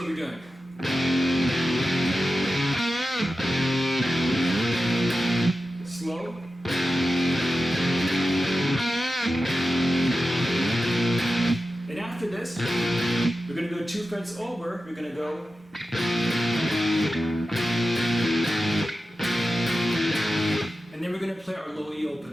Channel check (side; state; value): both; normal; correlation 0.92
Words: we're doing. Slow. And after this, we're going to go 2 frets over. We're going to go. And then we're going to play our low E